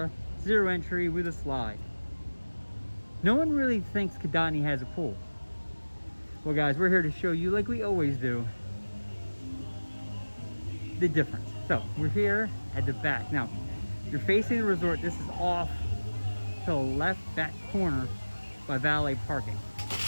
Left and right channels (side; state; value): both; inverted; correlation -1.00